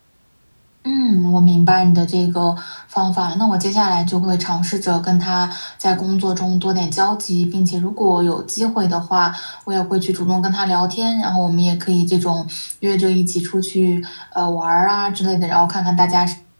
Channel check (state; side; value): inverted; both; correlation -1.00